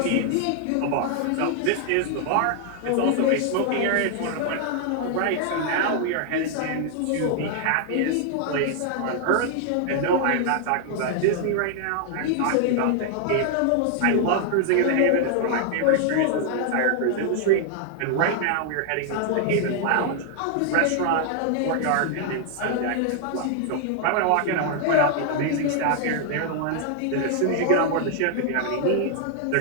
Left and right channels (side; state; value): both; different; correlation 0.00